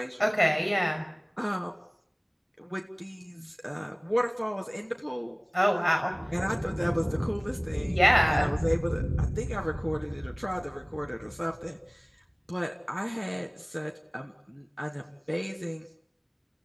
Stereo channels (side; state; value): both; identical; correlation 1.00